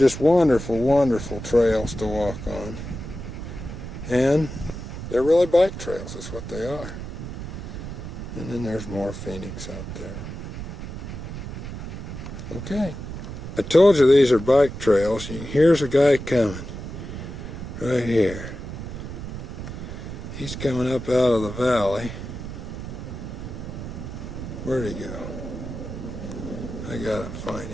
wonderful, wonderful trails to walk on. And they're really bike trails, is what they are. And then there's more Phoenix out there. Okay. I told you these are bike trails. Here's a guy coming. Right here. He's coming up out of the valley. Where'd he go? I gotta find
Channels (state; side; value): noise; right; rumble, 8 dB below the sound